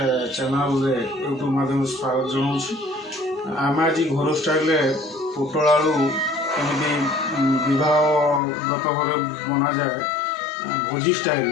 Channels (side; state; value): right; drops out; at 8.4 s